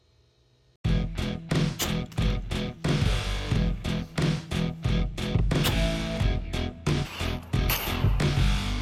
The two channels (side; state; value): both; identical; correlation 1.00